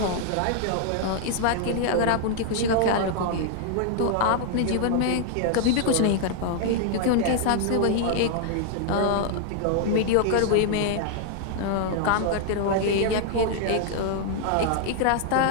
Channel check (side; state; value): both; different; correlation 0.00